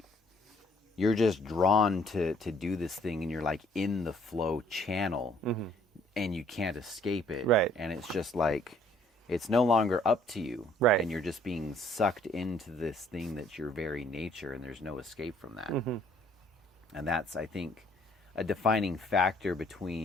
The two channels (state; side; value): normal; both; correlation 0.62